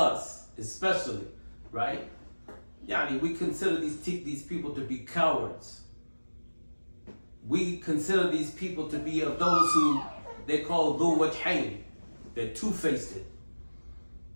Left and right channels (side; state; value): both; inverted; correlation -1.00